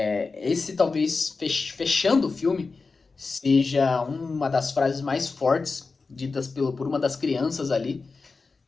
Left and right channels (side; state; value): right; quieter; 4.3 dB